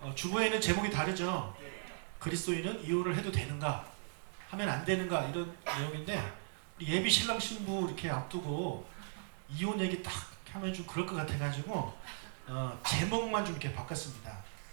주보에는 제목이 다르죠. 그리스도인은 이혼을 해도 되는가, 하면 안 되는가, 이런 내용인데 예비 신랑 신부 이렇게 앞두고 이혼 얘기 딱 하면 좀 그럴 것 같아가지고 제목만 좀 이렇게 바꿨습니다.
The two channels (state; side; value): silent; left; digital silence